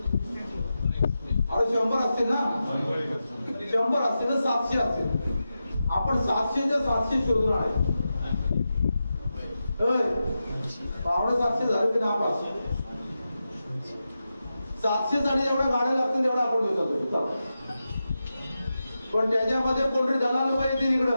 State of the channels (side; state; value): both; inverted; correlation -0.90